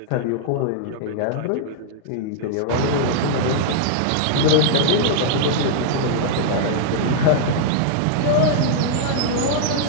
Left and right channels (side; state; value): both; different; correlation -0.01